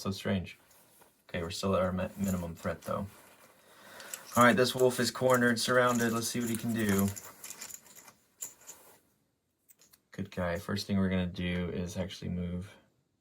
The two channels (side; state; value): both; identical; correlation 1.00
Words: so strange. Okay, we're still at our minimum threat, though. All right, this wolf is cornered, surrounded. Let's see what he can do. Good guy. First thing we're going to do is actually move